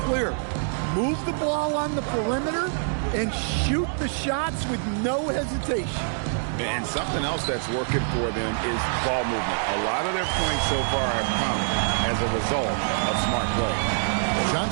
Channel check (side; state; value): left; silent; digital silence